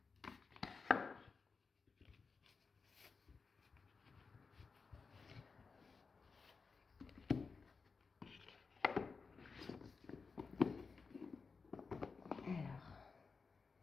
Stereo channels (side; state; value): right; quieter; 4.8 dB